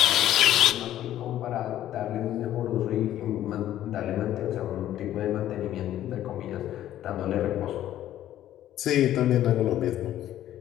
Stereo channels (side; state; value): right; quieter; 12.5 dB